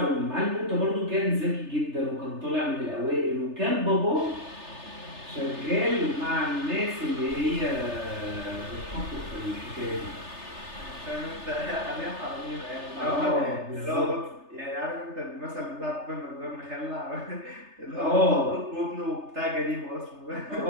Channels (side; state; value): left; late; 3.3 ms